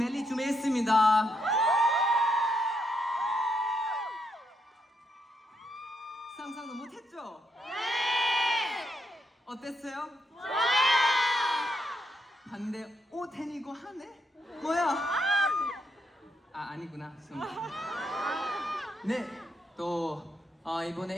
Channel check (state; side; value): normal; both; correlation 0.79